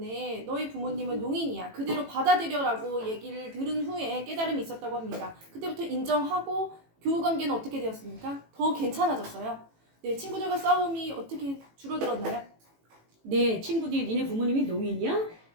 너희 부모님은 농인이야. 그대로 받아들여라고 얘기를 들은 후에 깨달음이 있었다고 합니다. 그때부터 인정하고 교우 관계는 어떻게 되었습니까? 더 괜찮아졌어요. 네, 친구들과 싸움이 어떻게 줄어들었나요? 네, 친구들이 니네 부모님이 농인이야?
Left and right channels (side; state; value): left; late; 18 ms